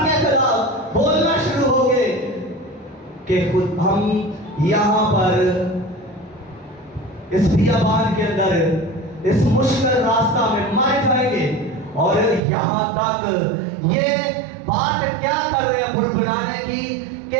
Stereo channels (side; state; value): left; drops out; at 12.4 s